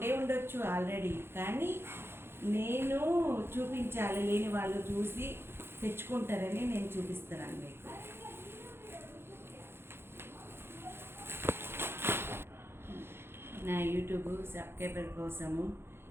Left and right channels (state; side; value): late; left; 0.11 ms